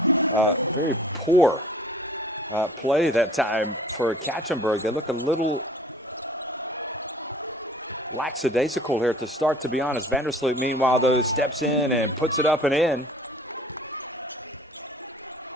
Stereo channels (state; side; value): normal; both; correlation 0.51